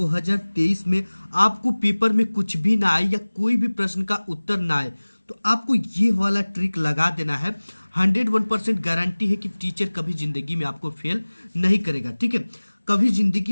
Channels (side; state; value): both; inverted; correlation -1.00